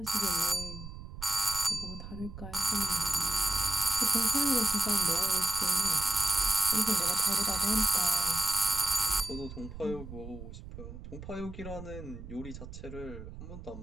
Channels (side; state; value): right; noise; rumble, 12 dB below the sound